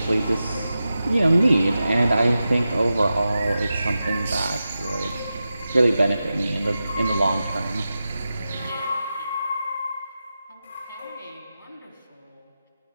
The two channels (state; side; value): inverted; both; correlation -0.92